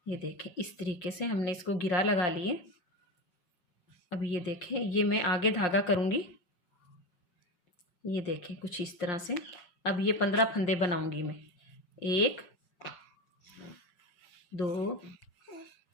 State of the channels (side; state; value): right; late; 5.6 ms